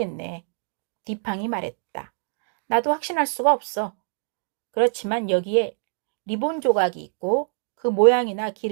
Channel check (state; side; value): silent; left; digital silence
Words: 디팡이 말했다. 나도 확신할 수가 없어. 그렇지만 여기에 리본 조각이 있고 그 모양이나